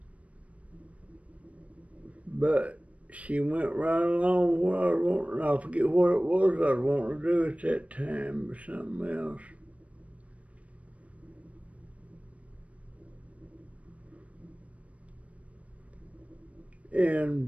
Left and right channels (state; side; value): late; left; 0.065 ms